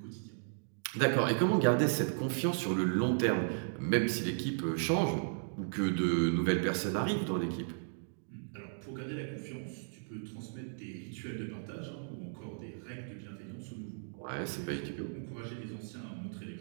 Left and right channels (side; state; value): left; silent; digital silence